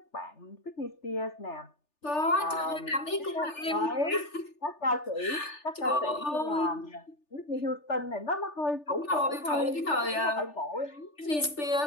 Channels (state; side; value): late; right; 3.4 ms